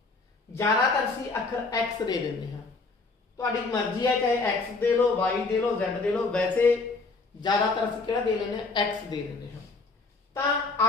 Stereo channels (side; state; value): right; quieter; 3.8 dB